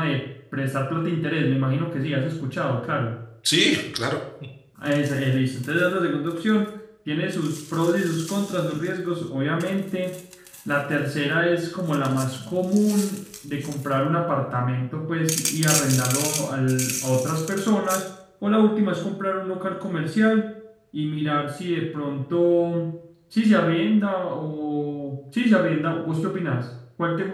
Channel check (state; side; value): identical; both; correlation 1.00